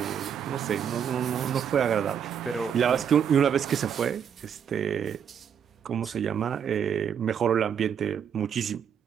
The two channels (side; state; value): left; quieter; 8.0 dB